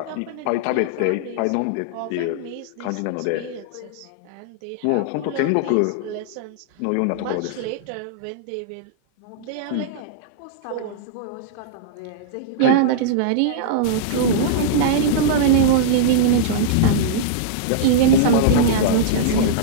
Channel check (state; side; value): different; both; correlation -0.02